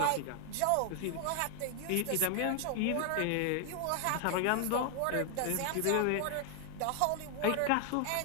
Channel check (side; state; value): both; different; correlation 0.00